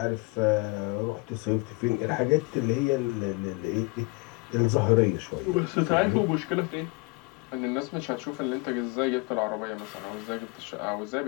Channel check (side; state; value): right; quieter; 27.1 dB